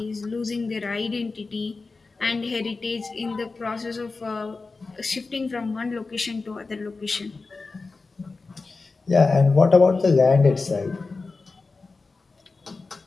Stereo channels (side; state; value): right; quieter; 3.9 dB